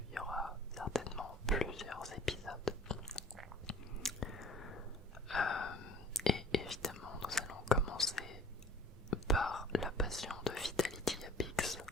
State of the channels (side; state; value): both; normal; correlation 0.47